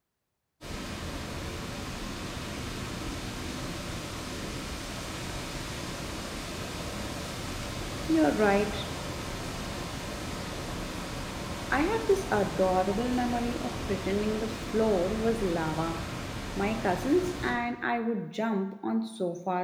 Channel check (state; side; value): identical; both; correlation 1.00